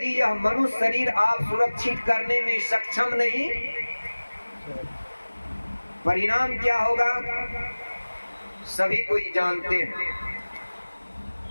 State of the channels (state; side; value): inverted; both; correlation -1.00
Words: यह मनुष्य शरीर आप सुरक्षित करने में सक्षम नहीं, परिणाम क्या होगा सभी कोई जानते हैं।